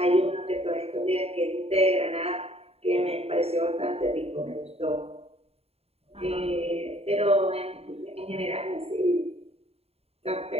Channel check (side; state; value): left; late; 0.29 ms